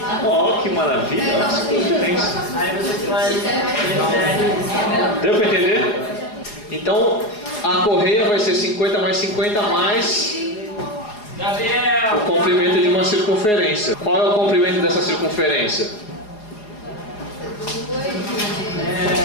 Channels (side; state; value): right; late; 4.7 ms